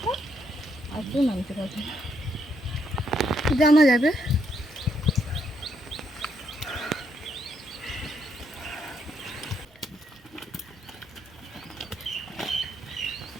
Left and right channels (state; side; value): normal; both; correlation 0.75